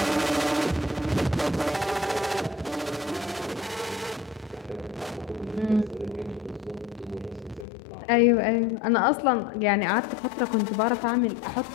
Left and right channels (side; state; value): right; drops out; at 7.7 s